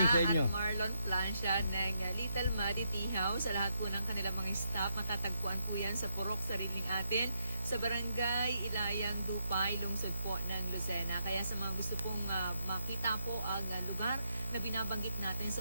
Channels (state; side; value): inverted; both; correlation -0.78